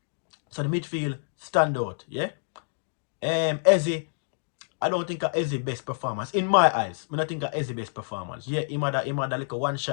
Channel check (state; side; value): silent; right; digital silence